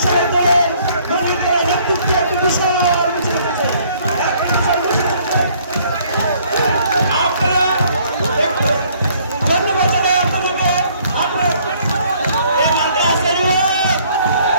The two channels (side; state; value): both; inverted; correlation -0.61